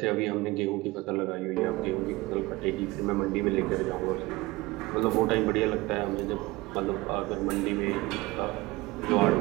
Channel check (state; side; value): quieter; left; 21.1 dB